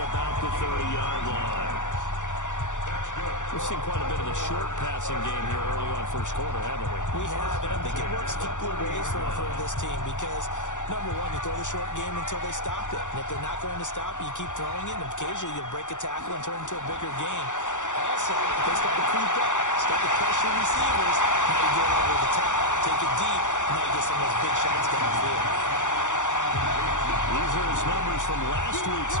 about the 30-yard line. We've seen quite a bit of the short passing game here early on first quarter, haven't we? We have, and I think it works a couple of ways for this team because, number one, you throw the short game until they stop it. And if they're not going to stop it, you keep throwing it, and occasionally you'll break a tackle and turn it into a bigger game. Also, if they start to creep up, start to pressure receivers, now you get over the top, take it deep, and now you get some of those big shots downfield. These are his numbers from last week's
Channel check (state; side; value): late; right; 0.86 ms